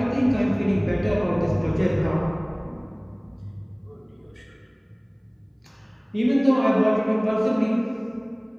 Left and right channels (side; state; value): both; identical; correlation 1.00